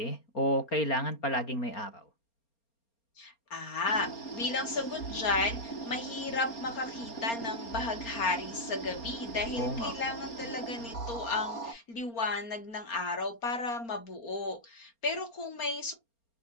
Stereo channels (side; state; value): right; late; 4.3 ms